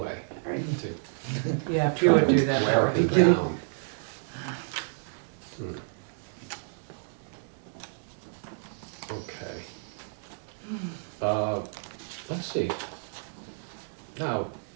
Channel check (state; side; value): silent; left; digital silence